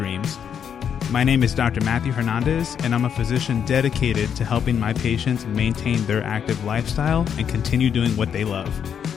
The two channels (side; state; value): right; quieter; 8.0 dB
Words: My name is Dr. Matthew Hernandez, and I'm a physician dedicated to helping my patients maintain their active lifestyle and continue doing what they love.